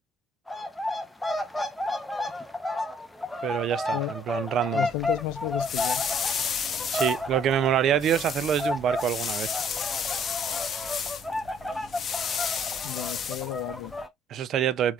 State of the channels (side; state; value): both; normal; correlation 0.62